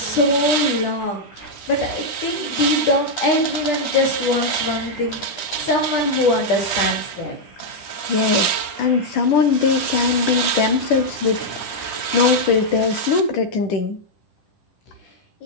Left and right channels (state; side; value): late; right; 9.8 ms